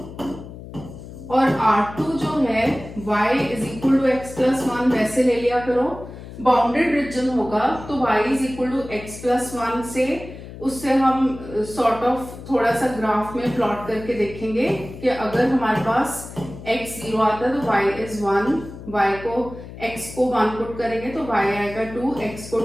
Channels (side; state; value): left; noise; hum, 14 dB below the sound